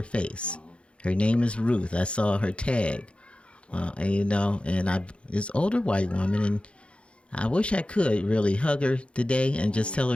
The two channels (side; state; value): right; late; 0.059 ms